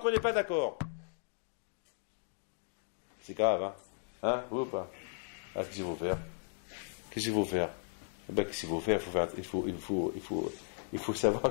on n'est pas d'accord. C'est grave, hein? Hein? Oui ou pas? Ah, qu'est-ce qu'il faut faire? Qu'est-ce qu'il faut faire? Ben, qu'est-ce qu'il faut faire? Il faut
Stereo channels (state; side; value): silent; right; 54 dB below the other